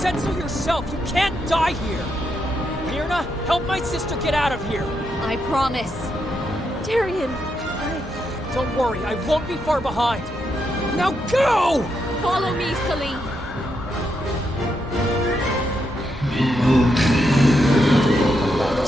so yourself! You can't die here! Myrna, help my sister get out of here! I promise. Tyrion, Don't worry, I won't be far behind! Now go! Follow me, Celine.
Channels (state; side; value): normal; both; correlation 0.81